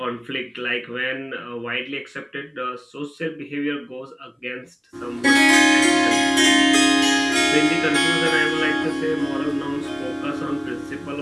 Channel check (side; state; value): both; identical; correlation 1.00